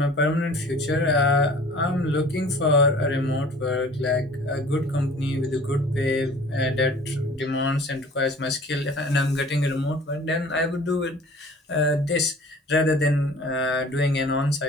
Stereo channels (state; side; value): normal; both; correlation 0.47